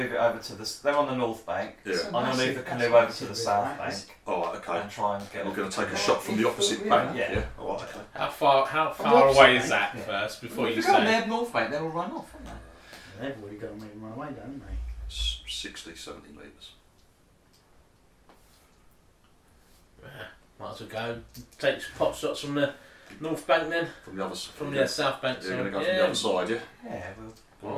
it over to the. They're on the north bank. Yeah. I'm going to move the canoe over to the south bank Alright, okay. and try and get. We're going to take a shot from the opposite bank. Yeah. Alright, okay. How far the opposite away is bank, that yeah. first before you If they're on say? their north bank, they'll run off, won't they? They've already got me my way down, haven't they? 60-70 metres. Might as well go take some pot shots from the north bank then, From the other from the south bank. You're going to go yeah. from the other side, yeah? Yeah, well.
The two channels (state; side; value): identical; both; correlation 1.00